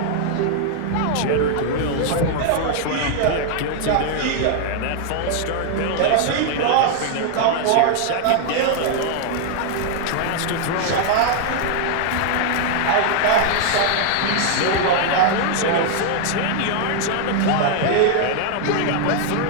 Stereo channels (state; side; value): different; both; correlation 0.00